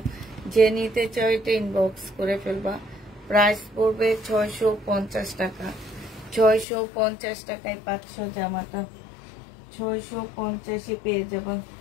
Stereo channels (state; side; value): drops out; right; at 6.7 s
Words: যে নিতে চাও এটা ইনবক্স করে ফেলবা। প্রাইস পড়বে 650 টাকা। 650 টাকায় পাচ্ছ জামাটা। 650-এ পেয়ে যাবা,